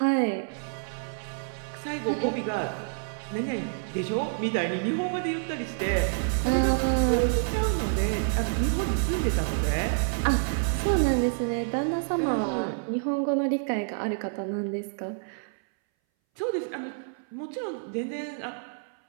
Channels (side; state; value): left; silent; 59 dB below the other